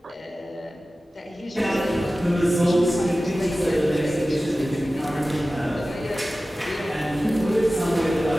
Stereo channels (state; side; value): normal; both; correlation 0.96